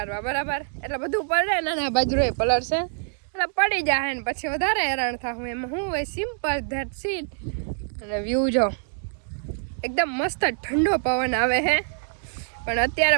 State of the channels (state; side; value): silent; left; digital silence